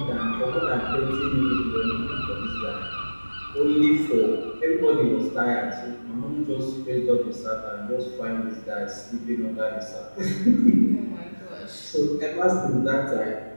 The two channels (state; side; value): inverted; both; correlation -1.00